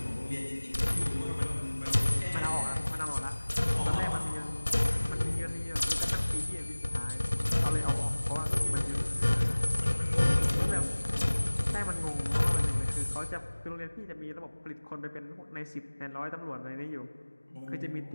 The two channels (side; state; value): both; inverted; correlation -1.00